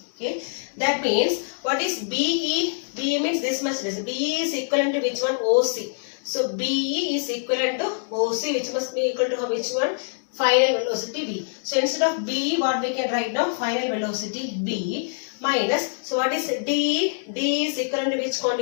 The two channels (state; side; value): silent; right; digital silence